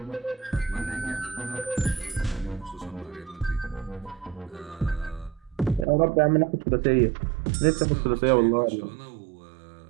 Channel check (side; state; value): left; drops out; at 5.9 s